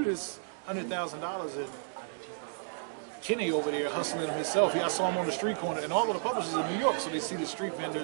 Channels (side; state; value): left; silent; digital silence